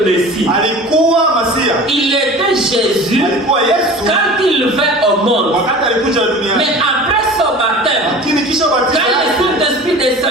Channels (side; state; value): both; normal; correlation 0.39